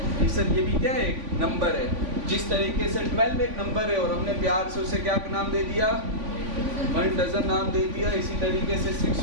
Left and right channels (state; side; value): late; left; 3.5 ms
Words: सर, ये भी क्या है, एक नंबर है। जिस तरीके से 12 एक नंबर है और हमने प्यार से उसे क्या नाम दे दिया, 1 डजन नाम दे दिया, इसी तरीके से